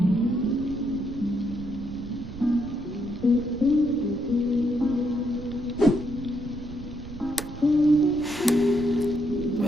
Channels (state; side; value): noise; right; rumble, 12 dB below the sound